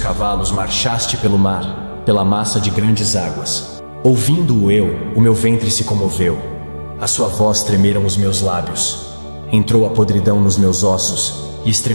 marchaste pelo mar, pela massa de grandes águas. Ouvindo-o eu, o meu ventre se comoveu. A sua voz tremeram os meus lábios. Entrou a podridão nos meus ossos e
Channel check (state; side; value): inverted; both; correlation -1.00